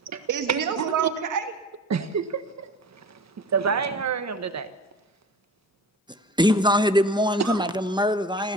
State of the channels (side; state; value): both; normal; correlation 0.39